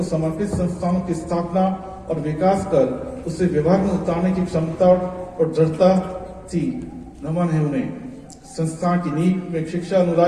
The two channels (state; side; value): identical; both; correlation 1.00